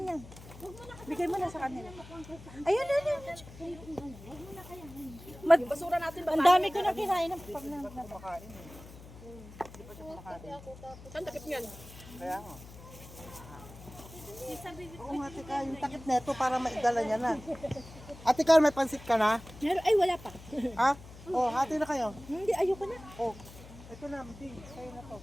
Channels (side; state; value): left; noise; hum, 17 dB below the sound